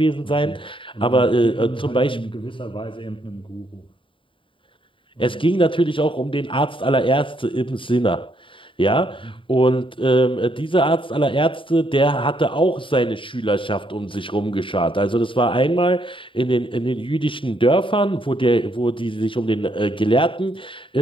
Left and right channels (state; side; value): late; right; 0.25 ms